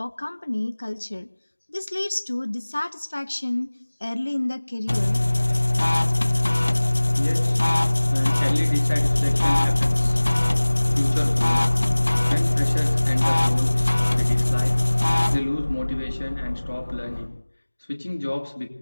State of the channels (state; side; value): inverted; both; correlation -1.00